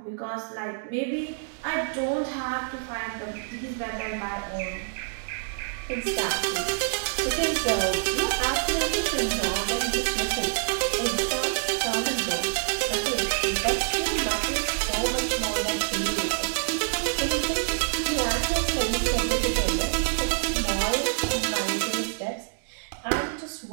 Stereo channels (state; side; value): silent; left; digital silence